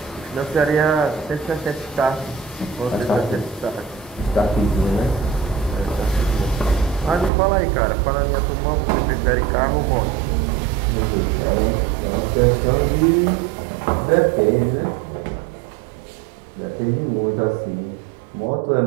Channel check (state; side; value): drops out; left; at 7.3 s